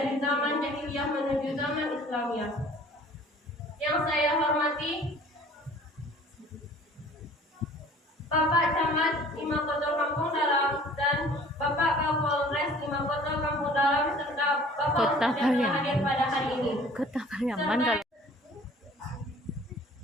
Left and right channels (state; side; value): normal; both; correlation 0.50